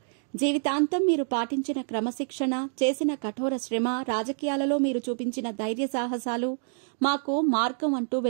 జీవితాంతం మీరు పాటించిన క్రమశిక్షణ, చేసిన కఠోర శ్రమ, రాజకీయాలలో మీరు చూపించిన ధైర్య సాహసాలు మాకు మార్గం అంటూ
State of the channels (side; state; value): left; silent; digital silence